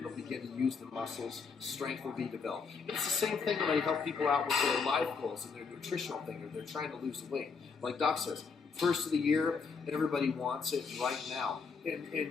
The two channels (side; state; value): right; quieter; 5.3 dB